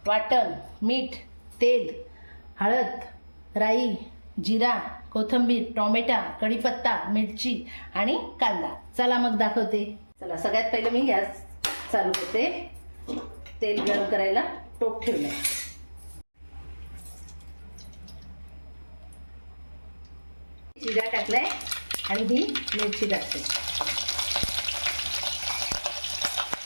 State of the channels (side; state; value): both; inverted; correlation -1.00